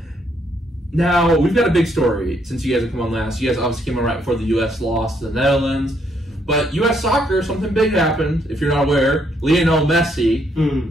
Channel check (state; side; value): normal; both; correlation 0.72